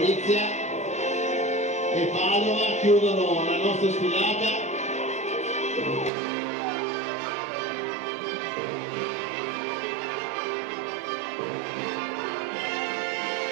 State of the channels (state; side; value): drops out; left; at 6.1 s